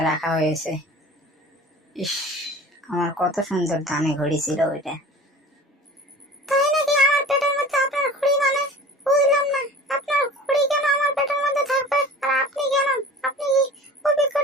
রাখা হয়েছে। ইস, আমার কত সুন্দর দামি ঘড়ি ছিল ওইটা।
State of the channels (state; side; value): normal; both; correlation 0.41